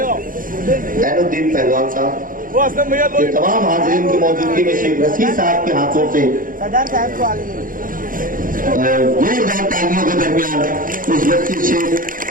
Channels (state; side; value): late; left; 0.40 ms